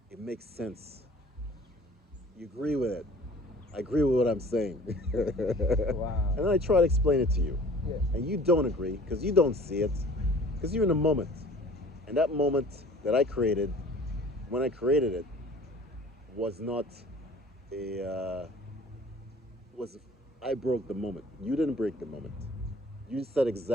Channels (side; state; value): both; normal; correlation 0.49